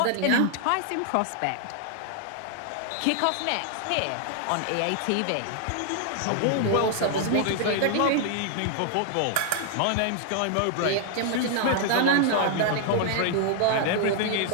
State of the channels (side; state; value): both; different; correlation 0.00